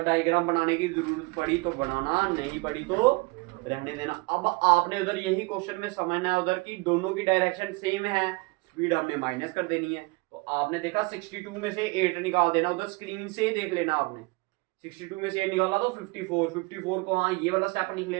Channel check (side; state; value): left; quieter; 26.2 dB